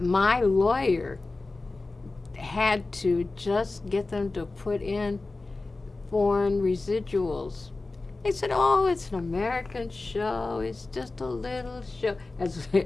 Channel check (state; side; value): quieter; right; 3.4 dB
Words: lawyer had to just get them to put in foreign residuals. They said, oh, it's an American show. It's just a little show. As